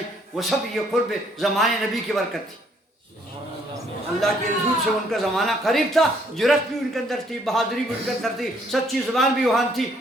وہ سب یہ قرب زمانے نبی کی برکت تھی. اللہ کے رسول سے ان کا زمانہ قریب تھا، جرأت بھی ان کے اندر تھی، بہادری بھی ان کے اندر تھی، سچی زبان بھی وہاں تھی،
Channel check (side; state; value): both; normal; correlation 0.66